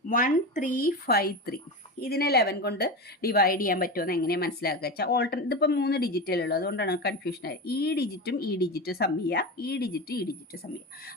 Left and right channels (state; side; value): normal; both; correlation 0.22